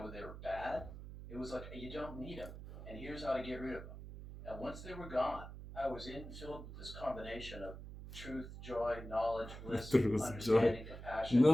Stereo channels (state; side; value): noise; right; hum, 11 dB below the sound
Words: bad. It was like, you don't need them, and here's how to get rid of them. And once they were gone, I was filled with this combination of truth, joy, knowledge, bliss, Truth, understanding, joy. compassion.